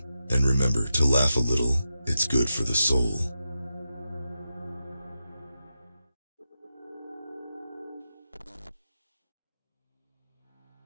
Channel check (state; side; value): inverted; both; correlation -0.88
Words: And remember to laugh a little, it's good for the soul.